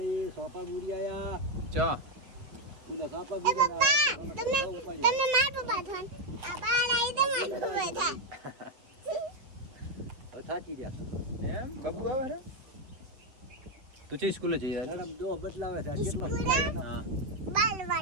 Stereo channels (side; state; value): left; late; 7.8 ms